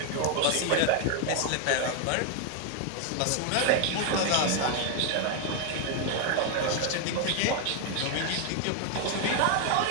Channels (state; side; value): different; both; correlation 0.01